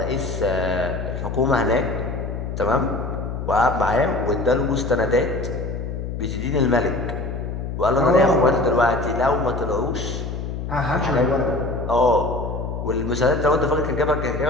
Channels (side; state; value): left; noise; hum, 5 dB below the sound